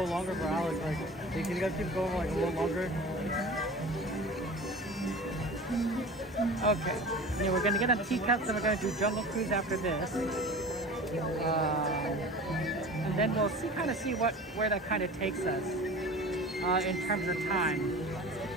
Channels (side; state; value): both; normal; correlation 0.38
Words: longer for Alex. Like, hey, can you guys keep going like a little longer? Okay. Yeah, we're gonna get on teacups and we're gonna do Jungle Cruise after this. And then we'll kind of see where that kind of takes us in terms of time.